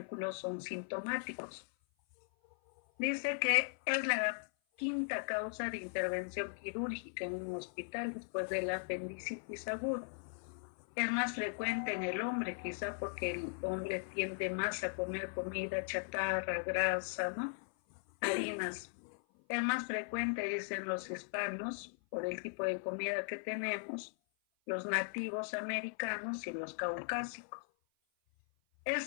son sintomáticos. Dice que es la quinta causa de intervención quirúrgica en un hospital después de la apendicitis aguda. Es más frecuente en el hombre, quizá porque el hombre tiende más a comer comida chatarra, grasa, ¿no?, harinas. Es más frecuente, dicen los hispanos, por el tipo de comida que tenemos, los nativos americanos y los caucásicos.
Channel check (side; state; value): right; silent; 52 dB below the other